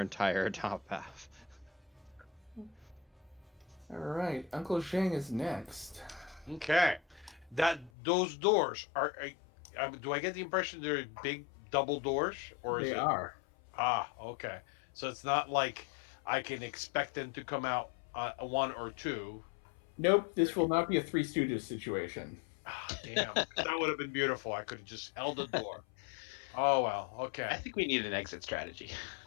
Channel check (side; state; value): right; drops out; at 7.9 s